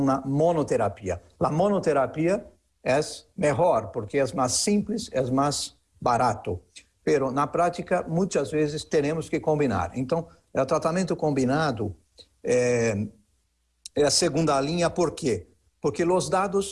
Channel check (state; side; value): identical; both; correlation 1.00